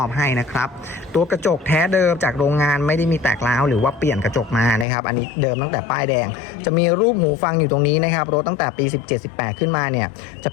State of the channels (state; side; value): drops out; right; at 4.9 s